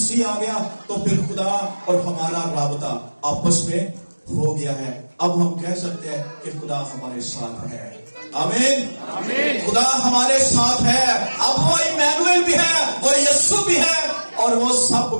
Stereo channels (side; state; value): both; inverted; correlation -1.00